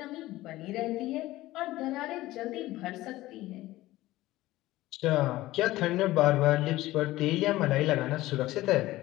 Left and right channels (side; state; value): right; quieter; 17.0 dB